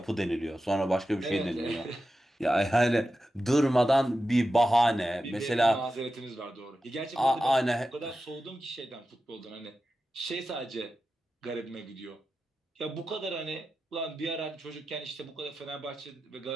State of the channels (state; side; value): normal; both; correlation 0.92